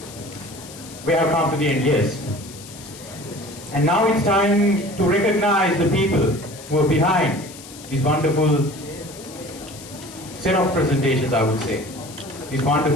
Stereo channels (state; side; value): noise; left; hiss, 17 dB below the sound